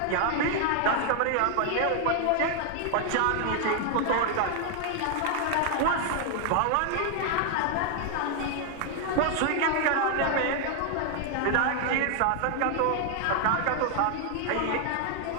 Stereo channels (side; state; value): both; different; correlation 0.00